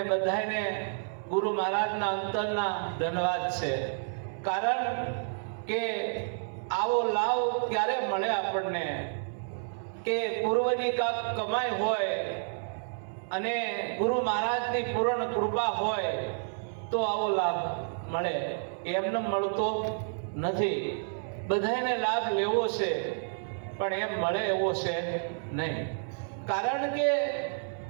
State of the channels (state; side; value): silent; left; 58 dB below the other